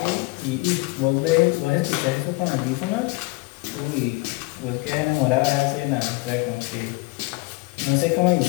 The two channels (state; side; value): quieter; right; 24.1 dB